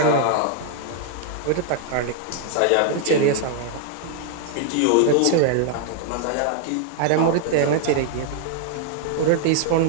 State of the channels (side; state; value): both; different; correlation 0.00